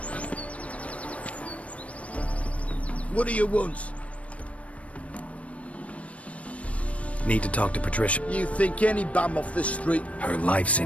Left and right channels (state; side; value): late; right; 0.064 ms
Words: What do you want? Need to talk to Patricia. You think any bum off the street... Her life's